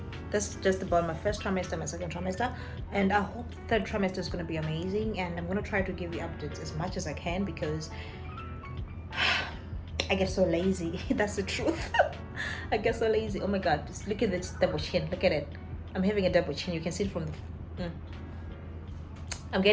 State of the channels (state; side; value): identical; both; correlation 1.00